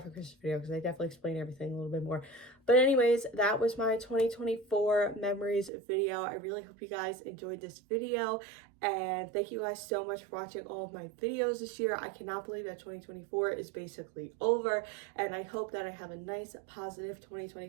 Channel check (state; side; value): drops out; left; at 5.7 s